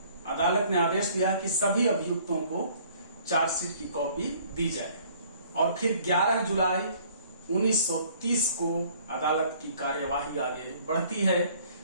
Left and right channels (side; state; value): both; inverted; correlation -0.57